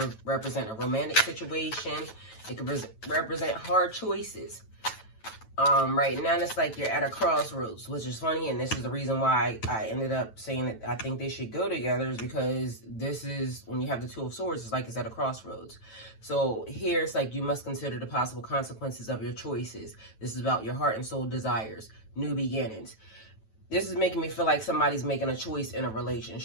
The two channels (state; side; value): late; right; 9.1 ms